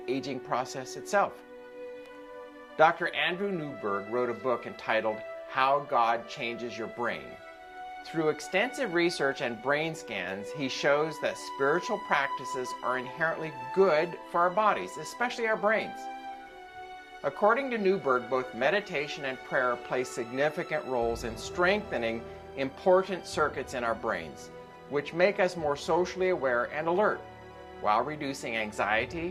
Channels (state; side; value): identical; both; correlation 1.00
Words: aging process itself. Dr. Andrew Newberg wrote a book entitled How God Changes Your Brain. Through extensive research and brain scans, he shows that spiritual practices are inherently good for our bodies, especially our brains. According to Newberg, both meditation and prayer play significant roles in strengthening important circuits in our brains, which make us more socially aware and alert, while reducing